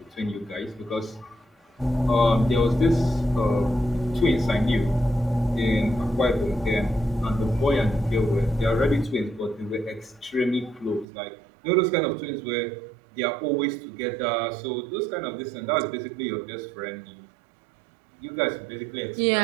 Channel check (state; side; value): drops out; left; at 11.1 s